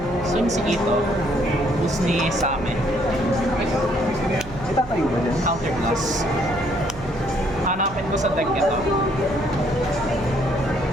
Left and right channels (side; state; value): right; noise; hum, 15 dB below the sound